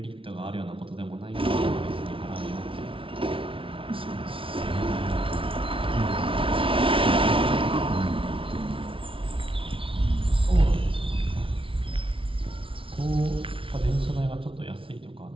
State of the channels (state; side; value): late; left; 0.25 ms